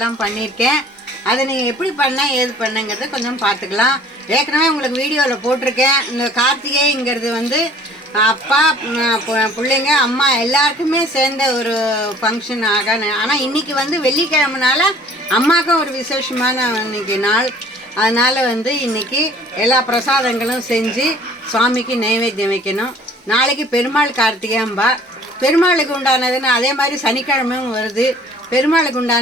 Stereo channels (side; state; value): both; normal; correlation 0.52